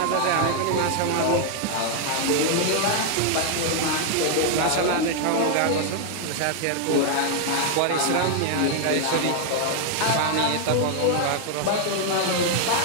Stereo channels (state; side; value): different; both; correlation 0.00